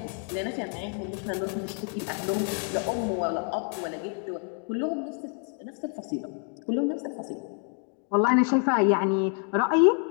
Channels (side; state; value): right; quieter; 39.4 dB